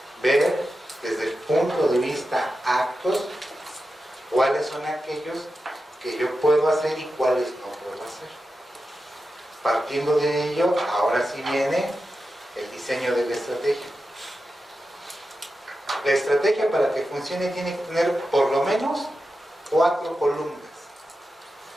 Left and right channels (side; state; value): both; normal; correlation 0.91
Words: ver desde el punto de vista actos cuáles son aquellos que yo puedo hacer y cuáles no puedo hacer. Partiendo de ello, ahora sí viene el diseño de la estrategia. La estrategia, para que funcione, tiene que tener por lo menos 4 columnas.